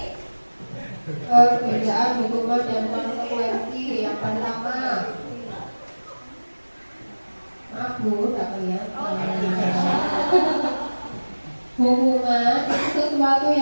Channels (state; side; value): inverted; both; correlation -1.00